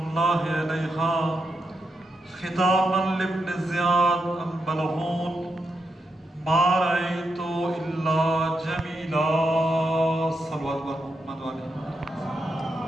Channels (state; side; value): normal; both; correlation 0.84